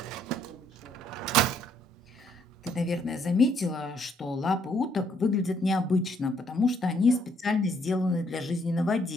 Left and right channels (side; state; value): both; normal; correlation 0.68